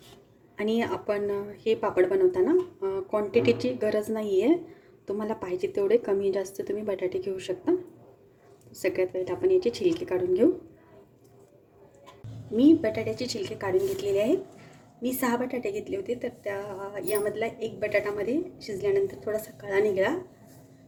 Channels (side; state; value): both; identical; correlation 1.00